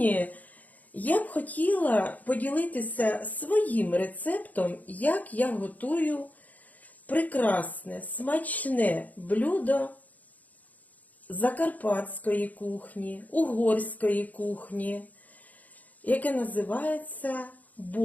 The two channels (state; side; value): late; right; 0.077 ms